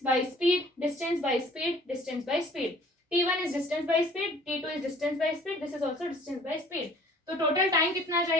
by speed, distance by speed, distance by speed, t1 is distance by speed, t2 is distance by speed, this is also distance by speed. तो total time कितना आ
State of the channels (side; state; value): both; normal; correlation 0.53